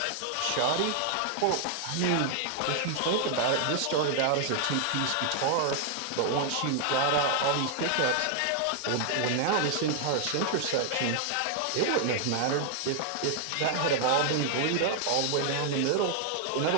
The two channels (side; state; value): both; different; correlation 0.00